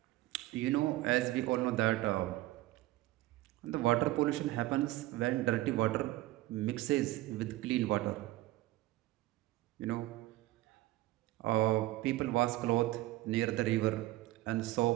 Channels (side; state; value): left; quieter; 17.5 dB